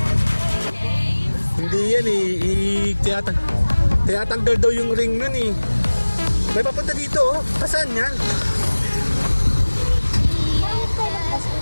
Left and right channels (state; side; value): inverted; both; correlation -1.00